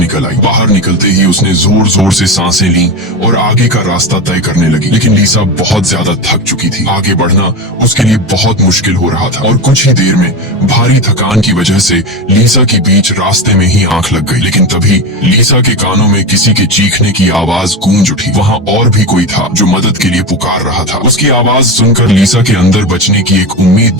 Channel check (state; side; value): normal; both; correlation 0.20